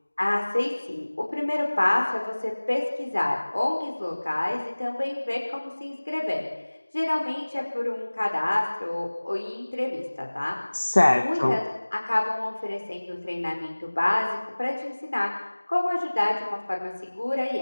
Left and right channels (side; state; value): both; inverted; correlation -1.00